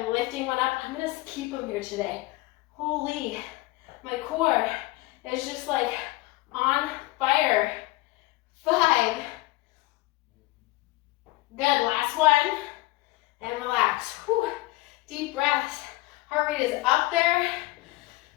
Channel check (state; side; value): quieter; right; 20.1 dB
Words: lifting one up. I'm gonna keep them here today. Holy, my core is just like on fire. 5. Good, last one. And relax. Whew. Deep breaths. Heart rate is up there.